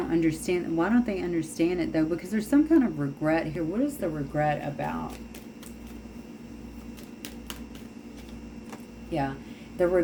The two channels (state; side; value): identical; both; correlation 1.00